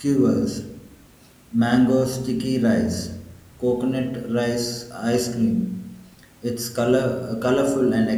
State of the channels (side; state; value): both; identical; correlation 1.00